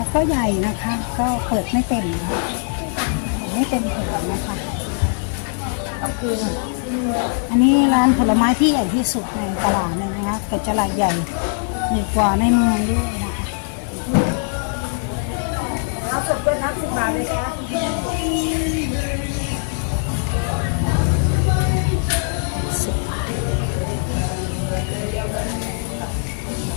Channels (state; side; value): silent; right; 60 dB below the other